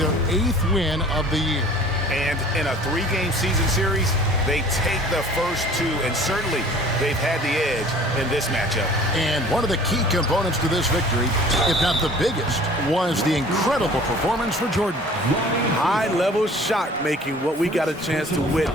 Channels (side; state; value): both; normal; correlation 0.48